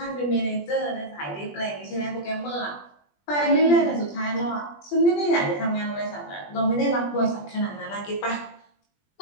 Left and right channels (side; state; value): right; late; 20 ms